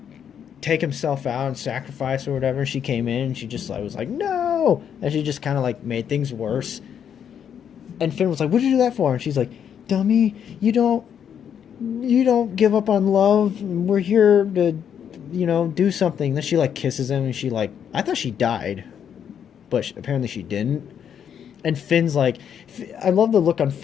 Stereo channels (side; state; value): right; quieter; 8.4 dB